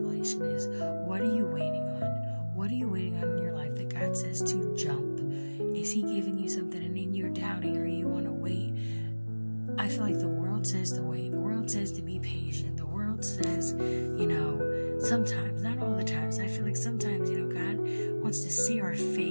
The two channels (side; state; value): both; inverted; correlation -1.00